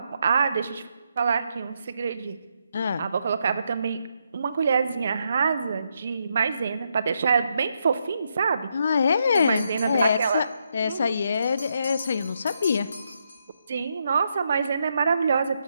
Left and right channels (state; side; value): inverted; both; correlation -0.79